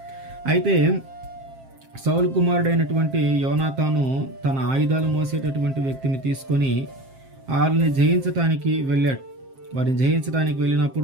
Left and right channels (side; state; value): left; late; 7.5 ms